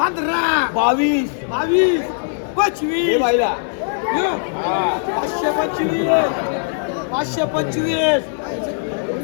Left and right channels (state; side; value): silent; right; 61 dB below the other